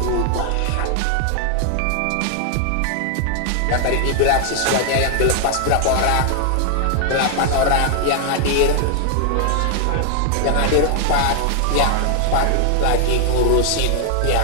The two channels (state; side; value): different; both; correlation 0.00